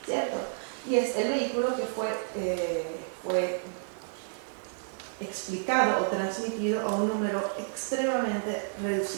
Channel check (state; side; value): silent; left; digital silence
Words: ¿cierto? Y es el vehículo que fue explicado o transmitido a un número extremadamente